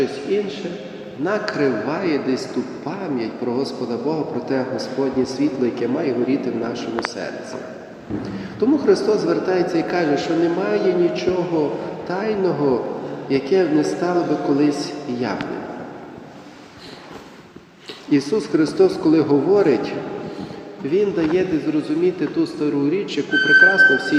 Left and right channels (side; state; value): both; identical; correlation 1.00